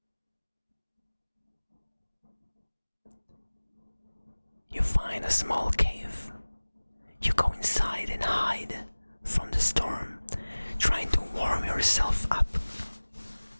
You find a small cave. You go inside and hide from the storm, trying to warm yourself up.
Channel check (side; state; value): both; inverted; correlation -1.00